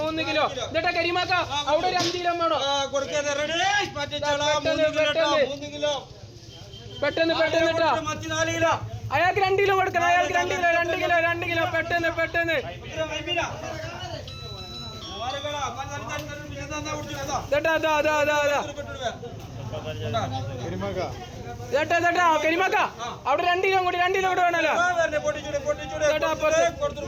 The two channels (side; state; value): both; identical; correlation 1.00